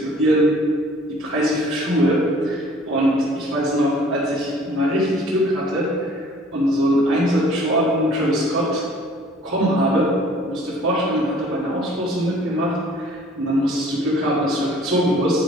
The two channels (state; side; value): normal; both; correlation 0.53